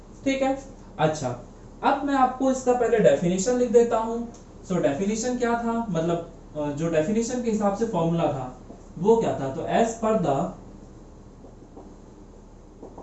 ठीक है। अच्छा, अब मैं आपको इसका पहले डेफिनेशन लिख देता हूं। सो डेफिनेशन क्या था, मतलब जो डेफिनेशन के हिसाब से फॉर्मूला था वो क्या था, तो as per the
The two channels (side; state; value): both; identical; correlation 1.00